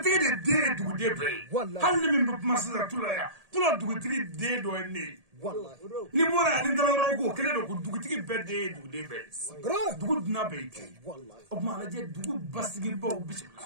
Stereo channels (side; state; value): left; late; 1.8 ms